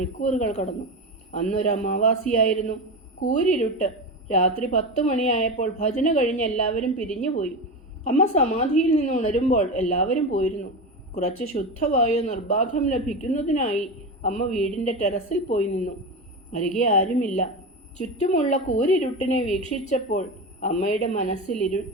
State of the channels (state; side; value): normal; both; correlation 0.21